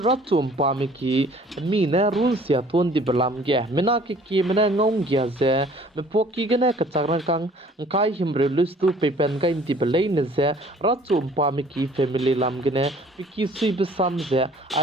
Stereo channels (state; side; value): normal; both; correlation 0.54